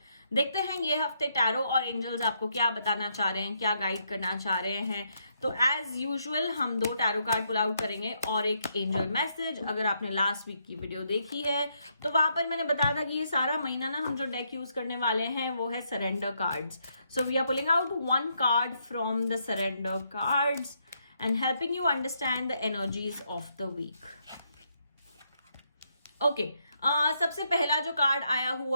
देखते हैं ये हफ्ते tarot और angels आपको क्या बताना चाह रहे हैं, क्या गाइड करना चाह रहे हैं. तो एज यूजुअल हम 2 टैरो कार्ड पुल आउट करेंगे और एक एंजल मैसेज. अगर आपने लास्ट वीक की वीडियो देखी है तो वहां पर मैंने बताया था कि ये सारा महीना ना हम जो डेक यूज करने वाले हैं वो है surrender cards. So we are pulling out 1 card from the surrender cards and helping you understand the energies of the week. Okay, सबसे पहला जो कार्ड आया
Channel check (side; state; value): both; inverted; correlation -0.77